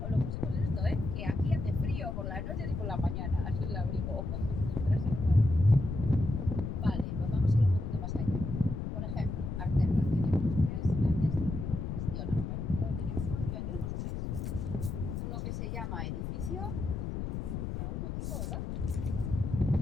os lo pusimos esto, ¿eh? Que aquí hace frío por las noches y por las mañanas. El abrigo. Traerse ropa de abrigo. Vale, pues vamos a ir un poquito más allá. Por ejemplo, Arterra, tenemos 3 grandes círculos de gestión ahora. En un momento teníamos 4 y ya tenemos 3. Uno que se llama edificio, por algún motivo, ¿verdad?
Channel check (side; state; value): left; noise; rumble, 4 dB below the sound